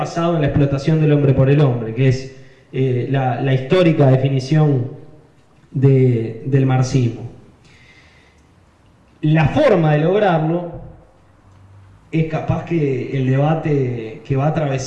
en la explotación del hombre por el hombre, que es la histórica definición del marxismo. La forma de lograrlo es capaz que el debate que va a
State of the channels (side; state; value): both; identical; correlation 1.00